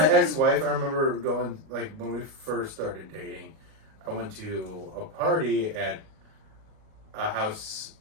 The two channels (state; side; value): late; left; 37 ms